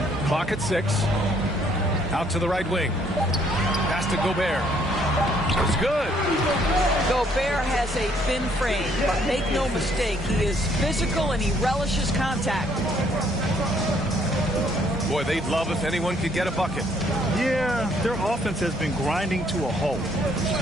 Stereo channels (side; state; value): both; normal; correlation 0.66